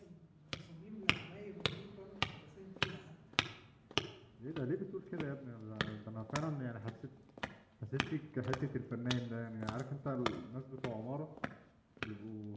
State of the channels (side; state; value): both; identical; correlation 1.00